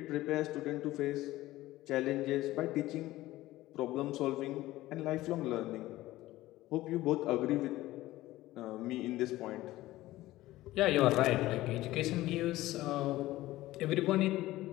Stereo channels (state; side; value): quieter; right; 16.7 dB